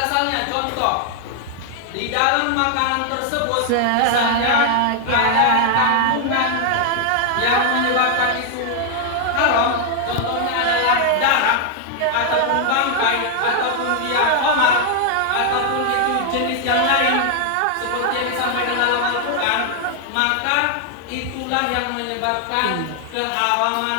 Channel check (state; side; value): different; both; correlation 0.00